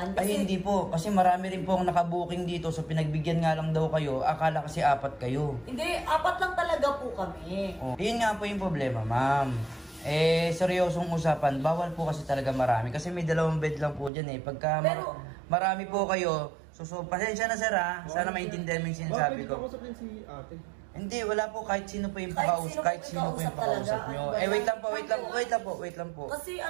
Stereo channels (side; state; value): left; drops out; at 14.1 s